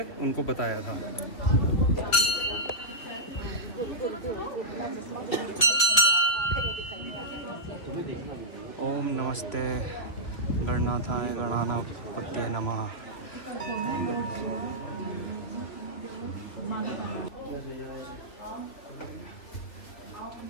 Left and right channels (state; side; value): late; right; 2.8 ms